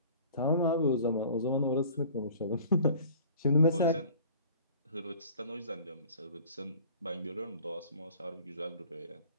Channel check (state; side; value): inverted; both; correlation -0.48